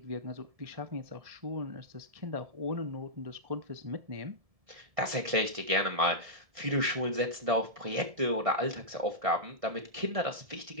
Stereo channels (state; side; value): late; left; 1.7 ms